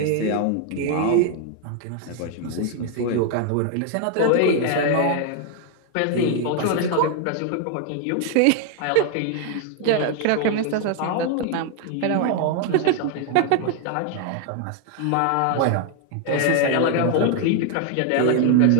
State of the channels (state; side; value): different; both; correlation 0.00